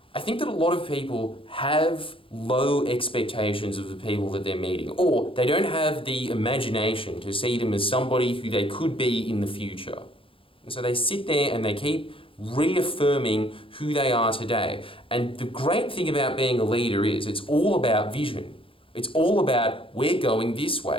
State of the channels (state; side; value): late; right; 0.26 ms